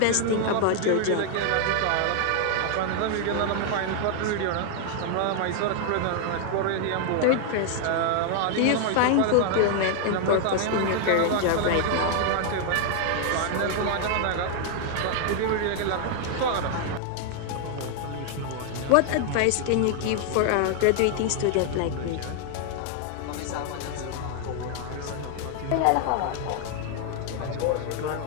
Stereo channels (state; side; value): different; both; correlation 0.00